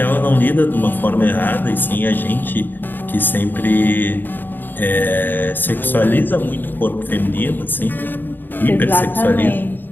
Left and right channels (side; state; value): right; late; 0.092 ms